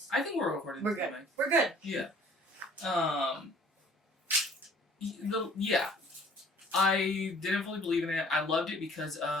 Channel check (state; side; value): normal; both; correlation 0.55